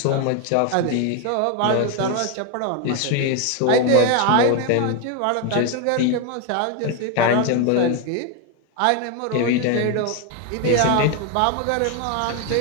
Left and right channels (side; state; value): both; different; correlation 0.01